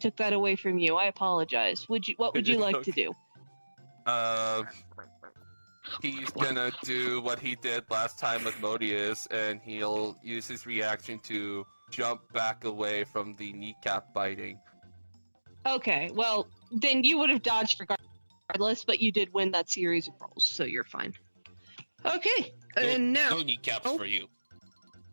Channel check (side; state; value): both; inverted; correlation -1.00